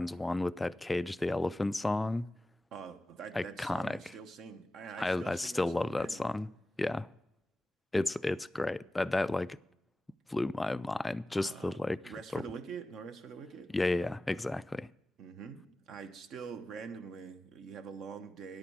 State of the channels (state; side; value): normal; both; correlation 0.95